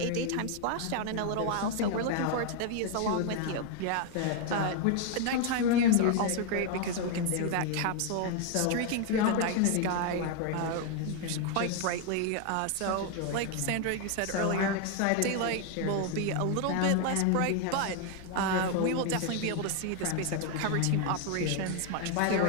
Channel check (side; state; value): both; different; correlation 0.00